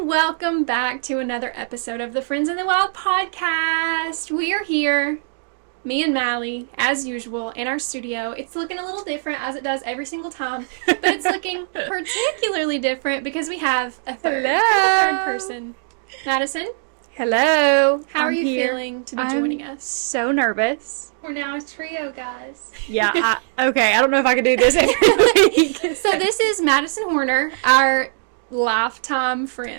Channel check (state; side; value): silent; left; digital silence